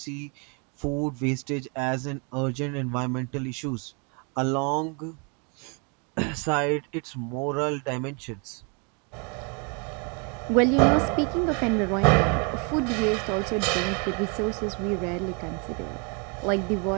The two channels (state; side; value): quieter; left; 34.8 dB